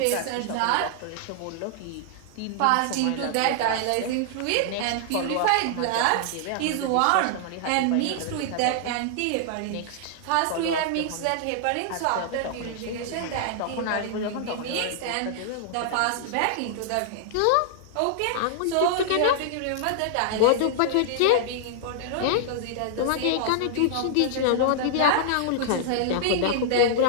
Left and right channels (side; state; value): both; different; correlation -0.01